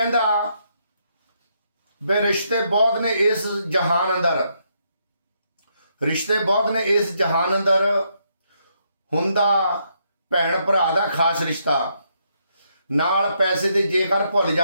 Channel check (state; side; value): inverted; both; correlation -0.76